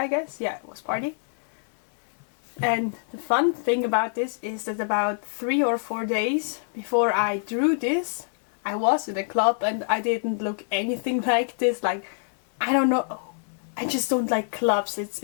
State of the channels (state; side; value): silent; right; 61 dB below the other